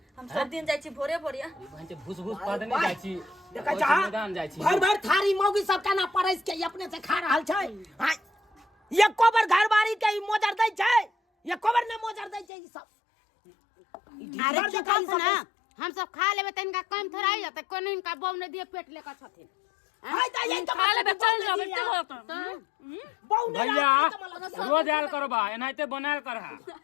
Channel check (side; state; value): right; drops out; at 12.5 s